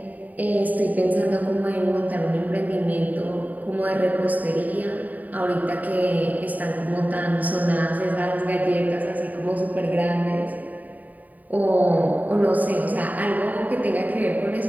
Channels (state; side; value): late; left; 0.077 ms